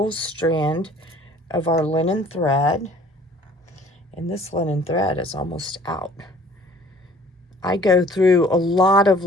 strand of our linen thread. And this linen thread is almost out. I go through a lot of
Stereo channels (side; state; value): both; normal; correlation 0.53